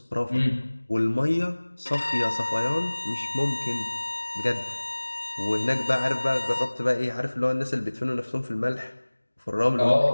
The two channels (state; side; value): inverted; both; correlation -1.00